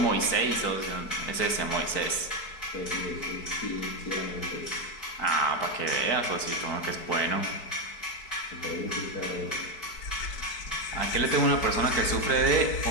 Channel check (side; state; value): right; late; 4.6 ms